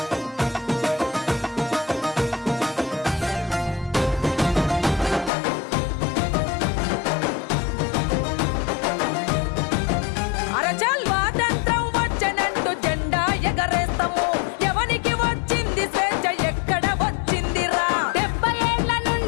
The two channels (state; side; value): drops out; right; at 5.3 s